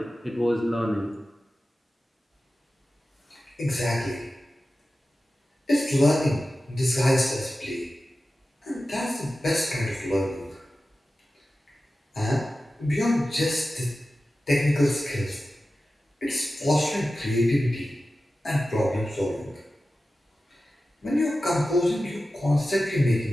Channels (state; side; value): normal; both; correlation 0.94